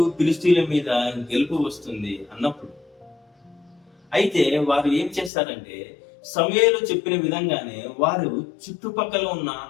ఫిలిష్తీయుల మీద గెలుపు వస్తుంది అన్నప్పుడు. అయితే వారు ఏం చేస్తారంటే సమూయేలు చెప్పిన విధంగానే వారు చుట్టుపక్కల ఉన్న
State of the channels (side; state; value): right; drops out; at 5.3 s